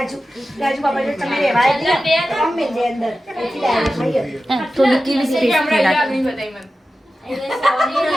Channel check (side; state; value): both; normal; correlation 0.94